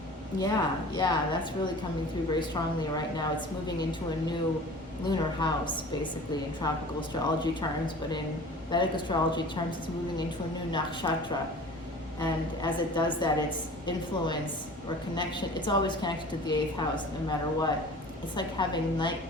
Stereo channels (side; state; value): both; normal; correlation 0.42